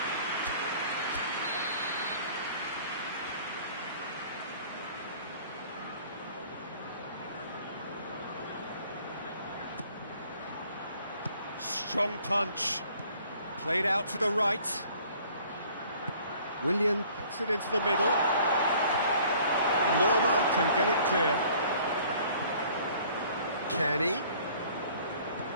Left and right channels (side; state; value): both; inverted; correlation -0.55